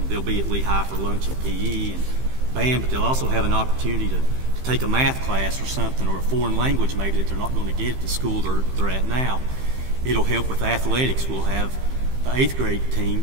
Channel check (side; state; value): left; late; 15 ms